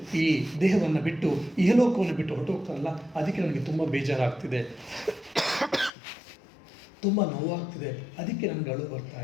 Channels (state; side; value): drops out; right; at 5.9 s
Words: ಈ ದೇಹವನ್ನು ಬಿಟ್ಟು, ಇಹಲೋಕವನ್ನು ಬಿಟ್ಟು ಹೊರಟೋಗ್ತಾರಲ್ಲ, ಅದಕ್ಕೆ ನನಗೆ ತುಂಬ ಬೇಜಾರಾಗ್ತಿದೆ, ತುಂಬ ನೋವಾಗ್ತಿದೆ, ಅದಕ್ಕೆ ನನಗೆ ಅಳು ಬರ್ತಾ